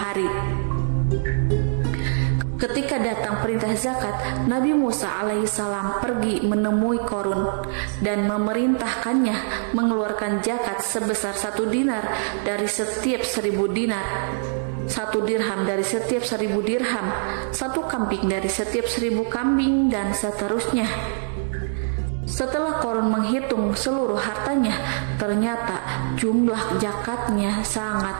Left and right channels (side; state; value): left; silent; digital silence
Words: Ketika datang perintah zakat, Nabi Musa alaihissalam pergi menemui Korun dan memerintahkannya mengeluarkan zakat sebesar 1 dinar dari setiap 1000 dinar, 1 dirham dari setiap 1000 dirham, 1 kambing dari setiap 1000 kambing, dan seterusnya. Setelah Korun menghitung seluruh hartanya, ternyata jumlah zakatnya